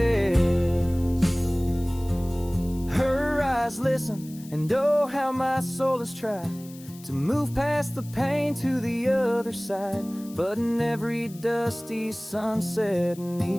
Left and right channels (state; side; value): noise; left; hiss, 21 dB below the sound